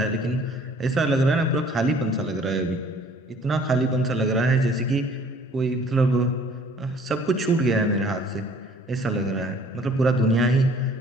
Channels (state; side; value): normal; both; correlation 0.55